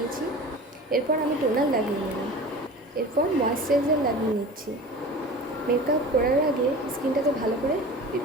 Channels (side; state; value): both; normal; correlation 0.37